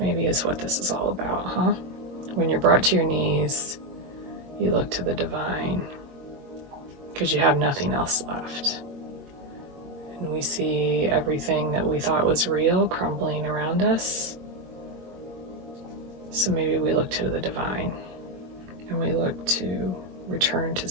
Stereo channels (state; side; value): late; left; 22 ms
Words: is what this is all about, huh? When you're brought to your knees, you look to the divine because you have nothing else left. And we see everything that we thought was real crumbling around us. So maybe we look to the divine and we look to return to